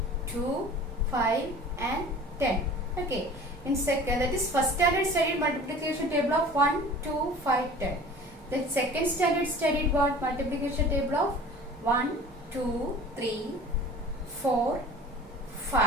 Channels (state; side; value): normal; both; correlation 0.43